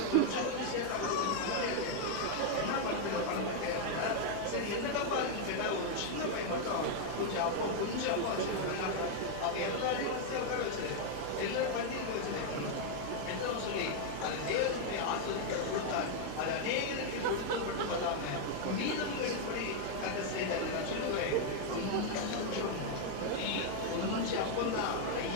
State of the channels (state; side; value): different; both; correlation 0.00